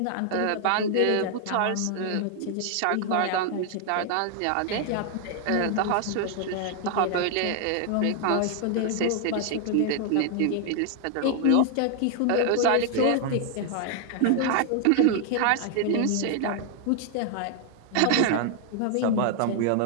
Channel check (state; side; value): different; both; correlation 0.00